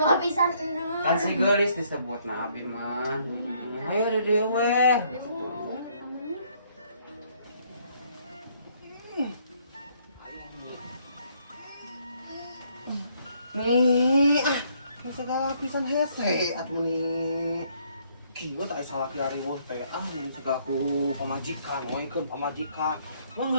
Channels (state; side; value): inverted; both; correlation -0.67